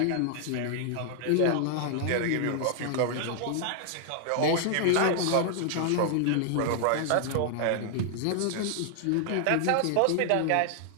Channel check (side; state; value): both; different; correlation -0.01